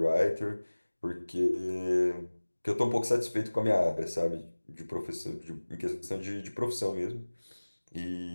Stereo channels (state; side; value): inverted; both; correlation -1.00